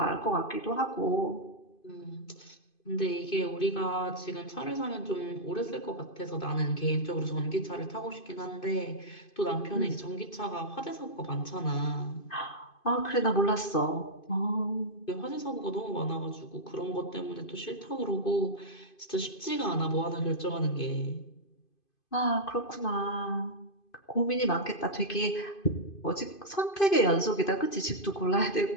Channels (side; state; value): right; late; 2.5 ms